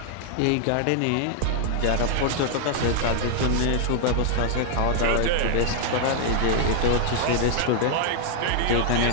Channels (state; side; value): different; both; correlation 0.00